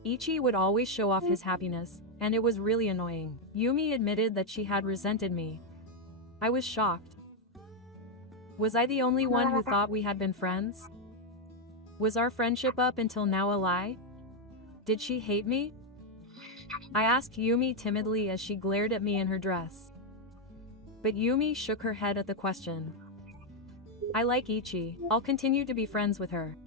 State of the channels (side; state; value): both; normal; correlation 0.02